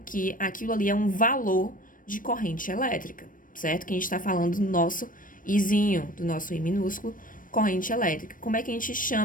que aquilo ali é um valor de corrente elétrica, certo? Que a gente está falando do nosso Izinho, do nosso I minúsculo, corrente elétrica. Como é que a gente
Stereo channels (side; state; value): right; late; 0.40 ms